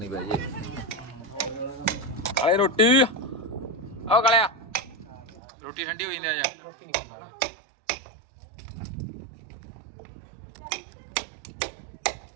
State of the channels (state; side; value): drops out; left; at 5.4 s